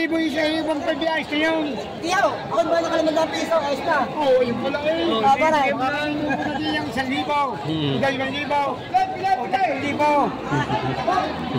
isa yung pag-ayos na yun. Tiyaw, ako ba na ka naman ng piso, ayos na. Oo, yung pala eh. Paray. Parang yung pala din yung 1,000. 2,000. O 3,000.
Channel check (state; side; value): identical; both; correlation 1.00